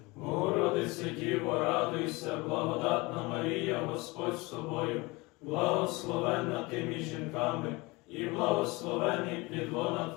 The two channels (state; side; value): quieter; right; 24.1 dB